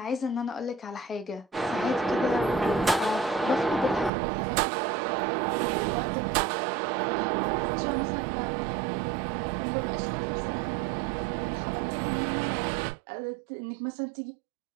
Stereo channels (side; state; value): left; drops out; at 4.1 s